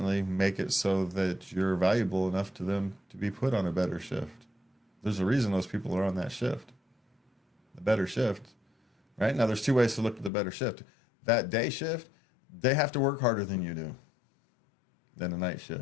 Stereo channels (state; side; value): drops out; right; at 10.3 s